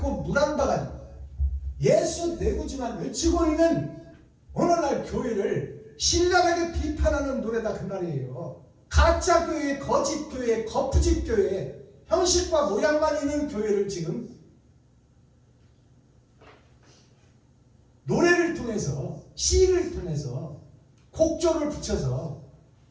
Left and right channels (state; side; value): identical; both; correlation 1.00